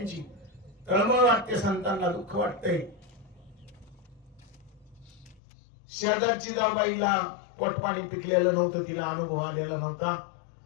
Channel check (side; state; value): right; drops out; at 5.4 s